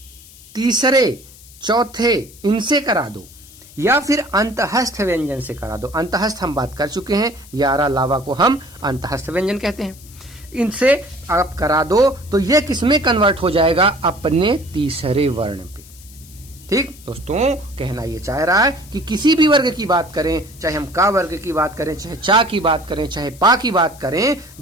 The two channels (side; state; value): left; noise; hiss, 22 dB below the sound